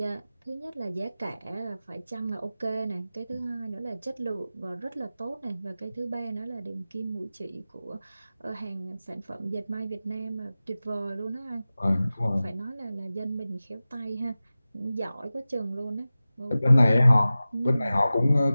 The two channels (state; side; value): inverted; both; correlation -0.96